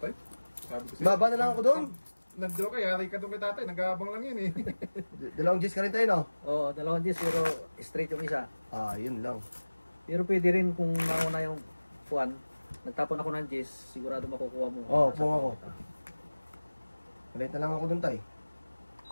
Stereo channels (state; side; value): inverted; both; correlation -1.00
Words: Sabi ko sa'yo. Baba na lang ako doon. Nandito ka, yari ka doon kay tatay. Nag-aabang lang yun eh. Dalawang G's ka rin tayo, no? Oo, 2 Gs pero straight yung isa. Ah, yun lang. Pero pwede rin kung nauna yung puwan. Nagtapon ako ng Gs, sigurado makukuha mo. Oo, pung ako. Ulit na lang ako doon, tay.